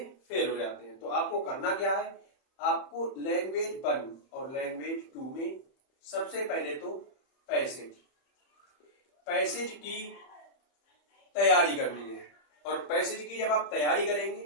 फेल हो जाते हैं। तो आपको करना क्या है, आपको लैंग्वेज 1 और लैंग्वेज 2 में सबसे पहले तो पैसेज की तैयारी करनी है। और पैसेज की जब आप तैयारी करेंगे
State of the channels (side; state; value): right; late; 31 ms